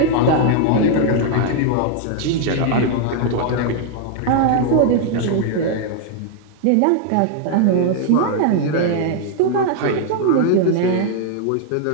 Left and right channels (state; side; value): different; both; correlation 0.00